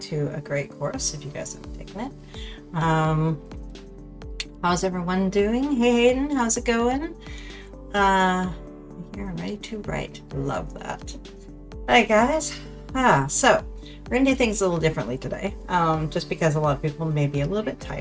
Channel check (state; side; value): identical; both; correlation 1.00